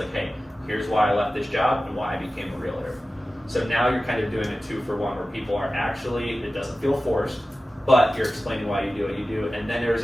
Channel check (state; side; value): normal; both; correlation 0.95